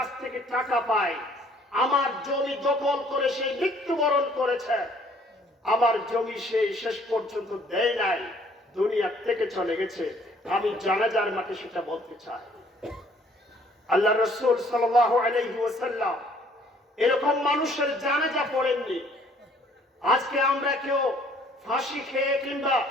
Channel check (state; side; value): normal; both; correlation 0.60